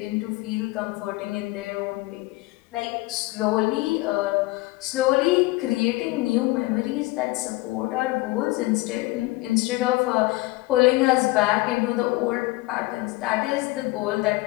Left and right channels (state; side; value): quieter; right; 21.0 dB